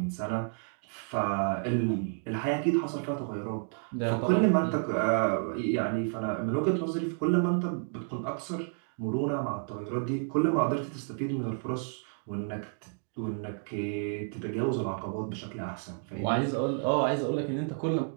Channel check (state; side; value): silent; left; 57 dB below the other